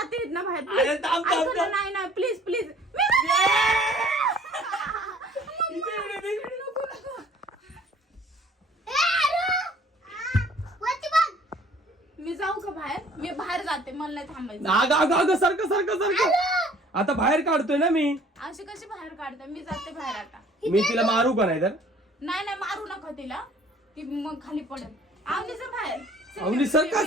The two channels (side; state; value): both; normal; correlation 0.54